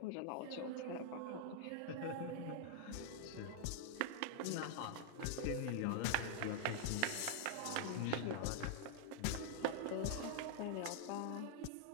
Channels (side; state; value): both; different; correlation -0.01